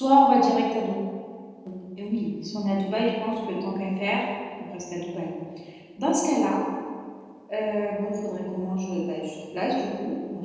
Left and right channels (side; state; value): both; identical; correlation 1.00